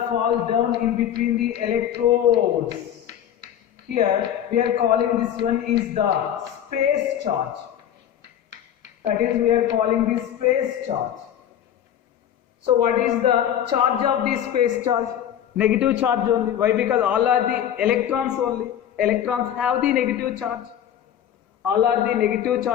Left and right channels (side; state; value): right; quieter; 10.2 dB